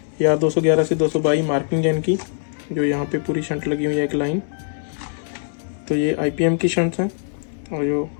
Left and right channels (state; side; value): silent; right; 64 dB below the other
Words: ये R211 से 222 मार्किंग है इनकी, जो यहाँ पे पूरी शंट लगी हुई है एक लाइन। तो ये आईपीएम की शंट्स हैं और जो